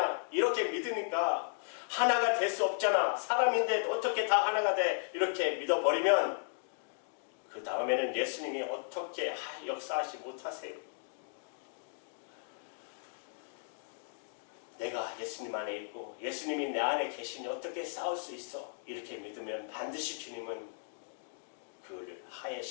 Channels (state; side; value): silent; right; digital silence